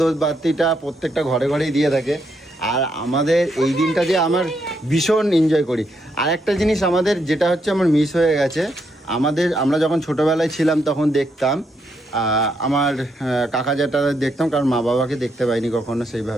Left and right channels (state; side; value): normal; both; correlation 0.78